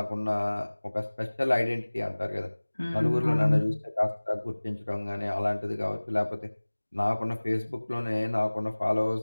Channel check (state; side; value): inverted; both; correlation -1.00